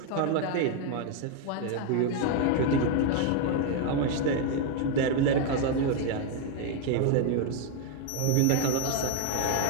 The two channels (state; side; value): different; both; correlation 0.01